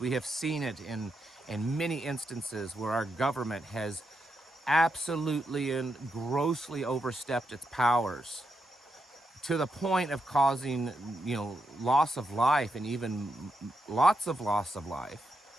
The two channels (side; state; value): both; normal; correlation 0.83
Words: We have seen it in many instances where our government has absolutely and grossly overstepped its powers to the point of causing, loss of life, and even lots of loss of life.